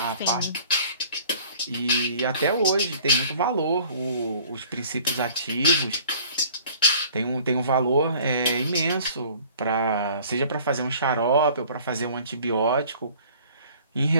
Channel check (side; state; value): both; inverted; correlation -0.52